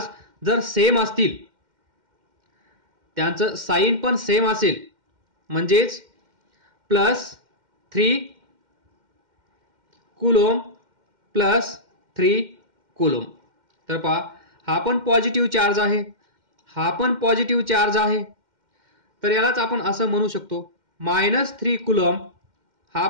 जर सेम असतील, त्यांचं साइन पण सेम असेल, म्हणजेच +3 कुलोम +3 कुलोम. तर पहा, हा पण पॉझिटिव्ह चार्ज आहे, हा पण पॉझिटिव्ह चार्ज आहे. तर यालाच आपण असं म्हणू शकतो -3 कुलोम, हा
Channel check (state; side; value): late; left; 2.1 ms